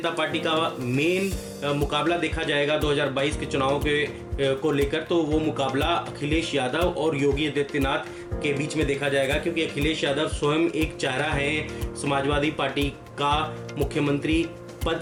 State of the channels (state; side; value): identical; both; correlation 1.00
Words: पार्टी का मेन मुकाबला देखा जाएगा 2022 के चुनाव को लेकर, तो वो मुकाबला अखिलेश यादव और योगी आदित्यनाथ के बीच में देखा जाएगा, क्योंकि अखिलेश यादव स्वयं एक चेहरा है समाजवादी पार्टी का मुख्यमंत्री